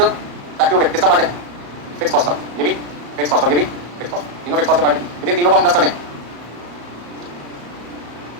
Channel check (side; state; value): left; late; 34 ms